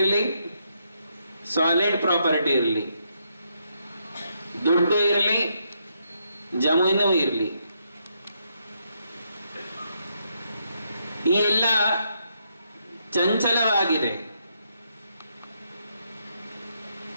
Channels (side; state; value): both; inverted; correlation -0.77